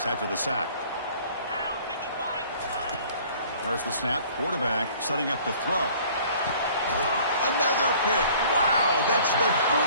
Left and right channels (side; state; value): both; inverted; correlation -0.52